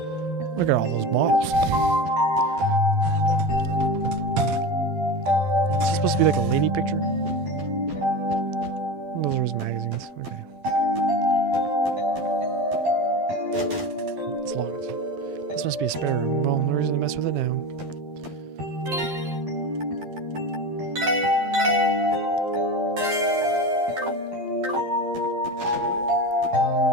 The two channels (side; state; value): left; late; 12 ms